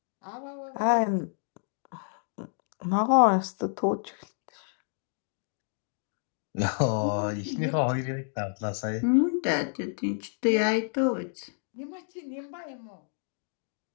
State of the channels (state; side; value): silent; right; digital silence